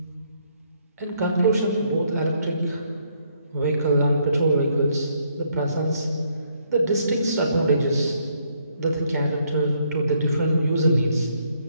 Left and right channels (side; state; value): both; inverted; correlation -0.70